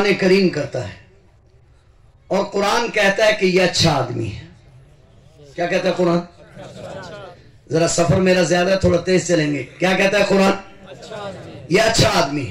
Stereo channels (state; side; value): identical; both; correlation 1.00